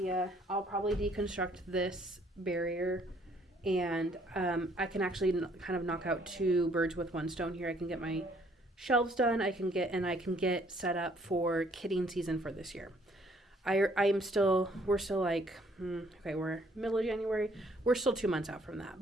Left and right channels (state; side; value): normal; both; correlation 0.64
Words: I'll probably deconstruct this barrier, and I can actually kind of knock out 2 birds with 1 stone here. I can get my shelves done. I can get set up for kidding season for this year. we're still like, okay, we're middle of January. We're still 2 months out from